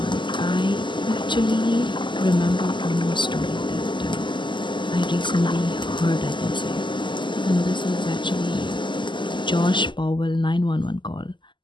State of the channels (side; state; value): right; late; 0.23 ms